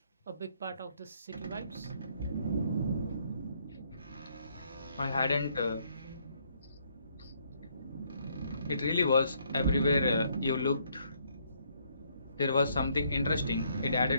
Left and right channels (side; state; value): both; inverted; correlation -0.69